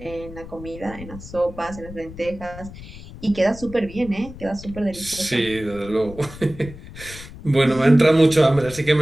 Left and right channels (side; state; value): left; noise; rumble, 15 dB below the sound